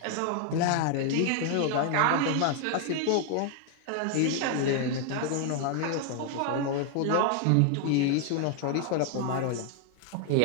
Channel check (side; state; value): both; different; correlation 0.00